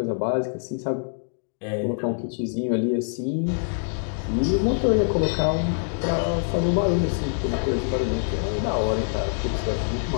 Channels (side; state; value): right; silent; digital silence